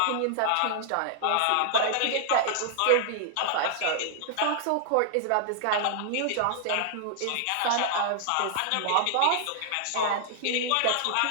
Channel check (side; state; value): both; different; correlation -0.01